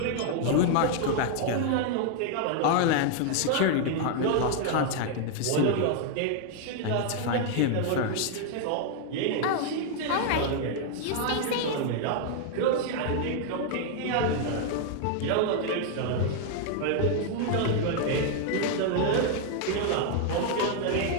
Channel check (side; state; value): both; different; correlation 0.00